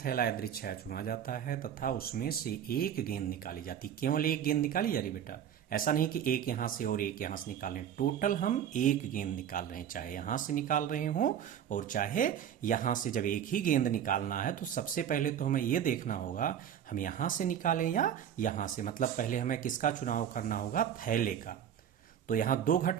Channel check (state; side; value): quieter; left; 9.4 dB